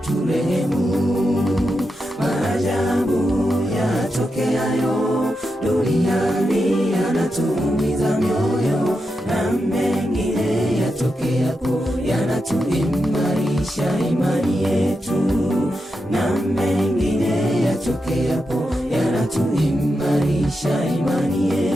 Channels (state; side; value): normal; both; correlation 0.87